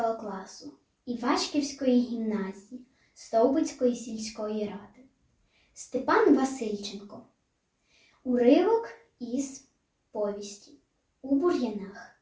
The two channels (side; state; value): both; identical; correlation 1.00